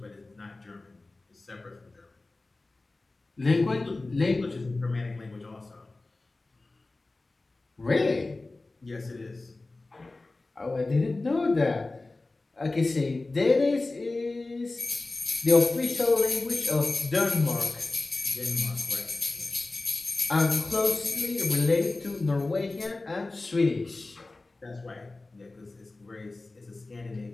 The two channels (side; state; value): right; quieter; 3.2 dB